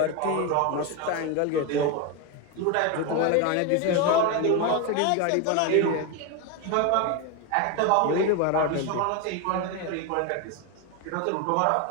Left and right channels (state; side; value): different; both; correlation 0.02